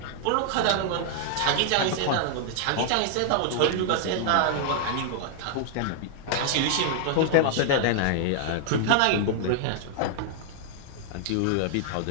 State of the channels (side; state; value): both; different; correlation 0.00